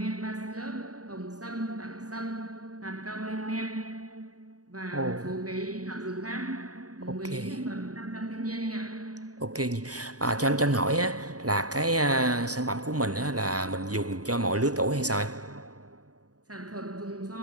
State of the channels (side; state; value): left; late; 0.67 ms